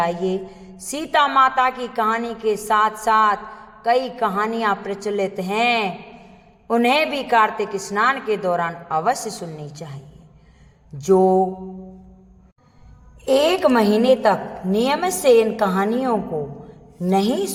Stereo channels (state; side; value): identical; both; correlation 1.00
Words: सीता माता की कहानी के साथ साथ कई कहानियां प्रचलित हैं, उन्हें भी कार्तिक स्नान के दौरान अवश्य सुननी चाहिए। जो 1 महीने तक नियमित से इन कहानियों को नहीं